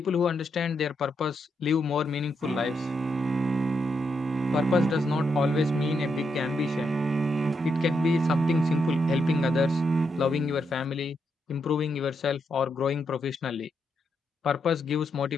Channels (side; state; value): both; normal; correlation 0.81